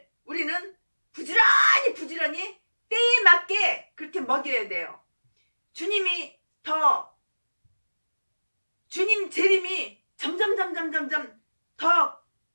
우리는 부지런히 때에 맞게 그렇게 먹여야 돼요. 주님 재림이 점점 더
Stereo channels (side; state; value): both; inverted; correlation -1.00